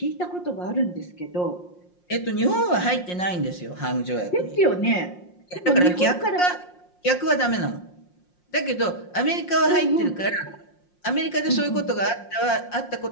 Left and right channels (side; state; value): right; late; 5.6 ms